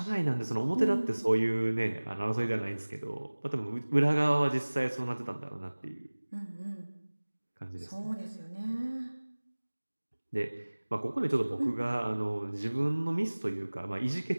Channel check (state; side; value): inverted; both; correlation -1.00